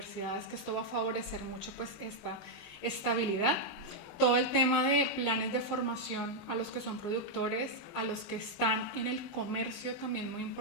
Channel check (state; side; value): late; right; 20 ms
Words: que esto va a favorecer mucho pues esta estabilidad. Todo el tema de planes de formación a los que son productores, a los que están en el comercio, también muy